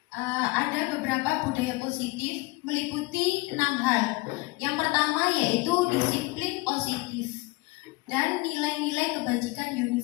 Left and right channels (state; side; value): quieter; right; 23.9 dB